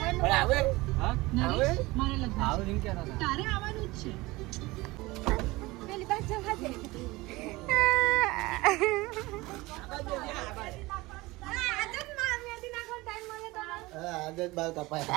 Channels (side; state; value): left; quieter; 21.1 dB